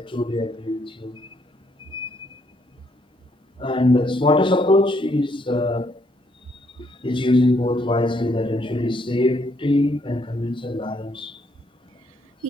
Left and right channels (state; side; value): normal; both; correlation 0.72